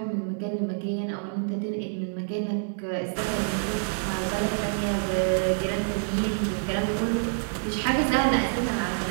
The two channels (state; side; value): silent; left; digital silence